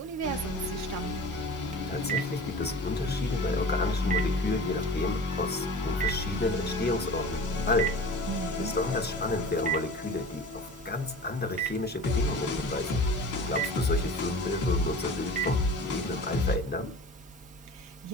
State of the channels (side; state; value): both; normal; correlation 0.38